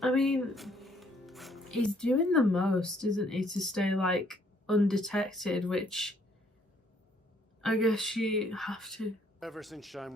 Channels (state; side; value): normal; both; correlation 0.65